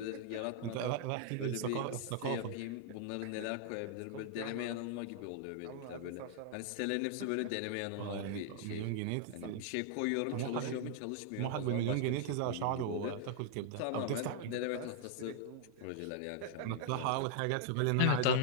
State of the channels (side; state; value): both; different; correlation -0.01